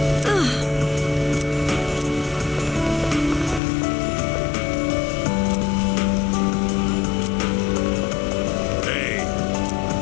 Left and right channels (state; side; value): drops out; right; at 3.6 s